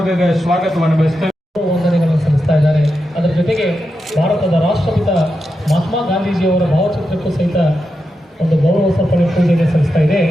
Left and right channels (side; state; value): both; normal; correlation 0.88